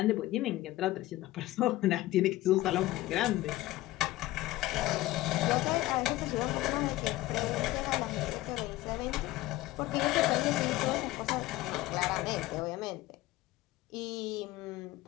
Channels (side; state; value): right; quieter; 17.0 dB